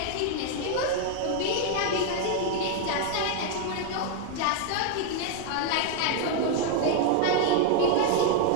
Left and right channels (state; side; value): different; both; correlation 0.00